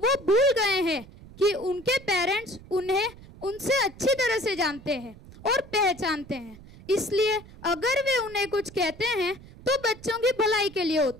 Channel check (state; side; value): noise; right; rumble, 19 dB below the sound